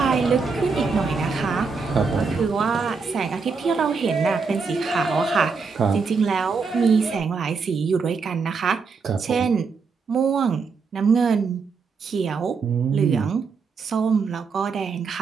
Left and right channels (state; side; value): quieter; left; 5.0 dB